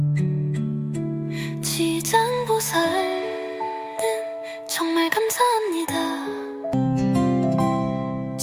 지장보살님, 정말 감사합니다.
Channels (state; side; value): identical; both; correlation 1.00